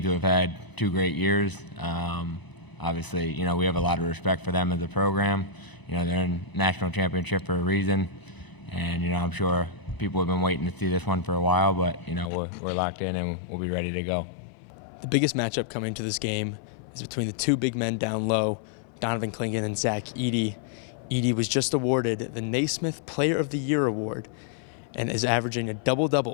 who have had two great years. Obviously, we have a lot of respect for them as a program. They're in national championship for a reason, and I'm sure people have been waiting to see this one for a while, but we're locked in and we'll be ready to go. The biggest matchup coming to this game is between the two big men down low, Donovan Clingan and Zach Edey. Edey was just awarded the Naismith Player of the Year award and is averaging a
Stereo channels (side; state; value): right; drops out; at 12.3 s